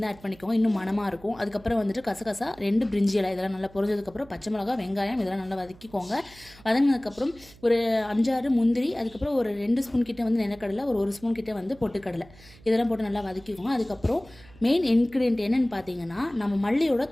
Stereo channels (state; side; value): noise; right; hum, 24 dB below the sound